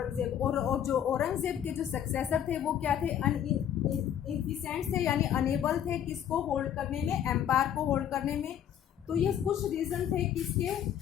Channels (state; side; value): quieter; right; 9.8 dB